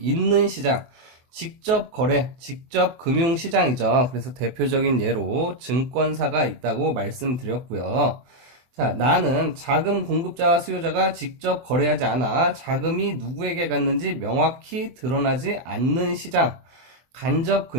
시장, 직접 거래, 직접 금융시장이죠. 그래서 대표적인 예로 증권사가 있다고 말씀드렸고요. 자, 나는 자금 공급자와 수요자가 직접 거래하지 않아 자금이 누구에게 갔는지 명확히 드러나지 않는 시장, 간접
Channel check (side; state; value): left; late; 23 ms